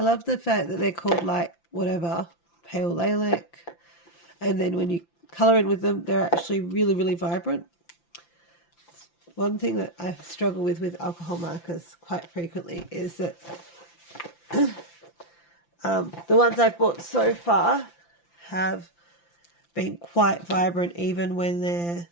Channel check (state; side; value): late; right; 5.9 ms